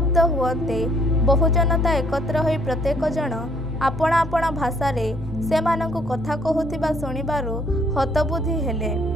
ହୁଅନ୍ତେ ବହୁ ଜନତା ଏକତ୍ର ହୋଇ ପ୍ରତ୍ୟେକ ଜଣ ଆପଣା ଆପଣା ଭାଷାରେ ସେମାନଙ୍କୁ କଥା କହୁଥିବା ଶୁଣିବାରୁ ହତବୁଦ୍ଧି ହେଲେ।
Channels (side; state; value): both; normal; correlation 0.64